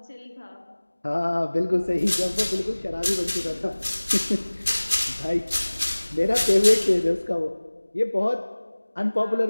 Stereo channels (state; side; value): inverted; both; correlation -1.00